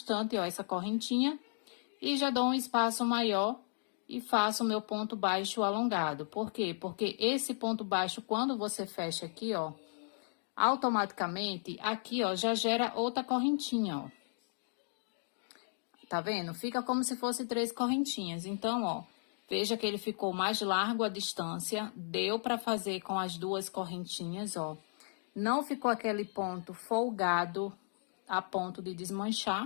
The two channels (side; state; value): right; silent; digital silence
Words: ó, essa correntinha e já dou um espaço maior e faço o meu ponto baixo alongado. Por quê? Porque esse ponto baixo, quando você fecha aqui, ó, automaticamente, aqui, ó, já gera outra correntinha, ó. Tá vendo? Fica como se fosse 3 correntinhas. Então, ó, veja que ele ficou mais largo a distância. Deu pra fazer com as 2 correntinhas, ó. Não ficou aquele ponto folgado a ponto de